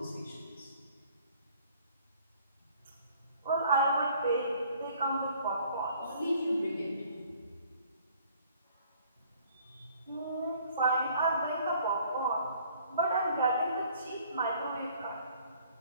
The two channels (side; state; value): both; inverted; correlation -0.58